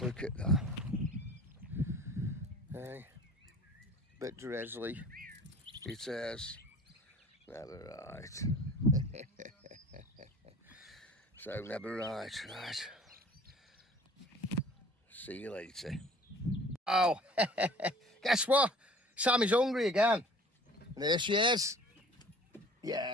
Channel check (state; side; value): normal; both; correlation 0.47